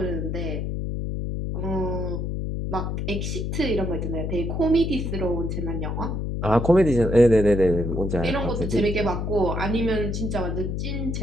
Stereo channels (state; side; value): noise; left; hum, 2 dB below the sound